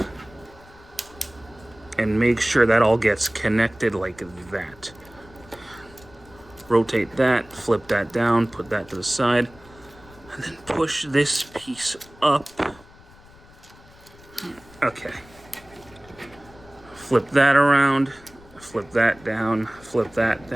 And make sure that all gets connected like that. Rotate that, flip that down, put that to the side, and then push this piece up. Okay. Flip that around, flip that down, flip that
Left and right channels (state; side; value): noise; left; rumble, 24 dB below the sound